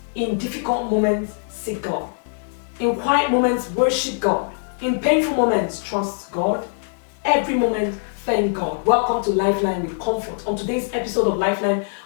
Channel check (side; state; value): right; silent; digital silence